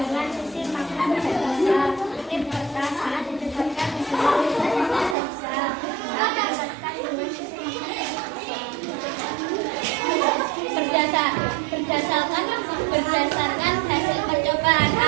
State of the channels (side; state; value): left; drops out; at 5.2 s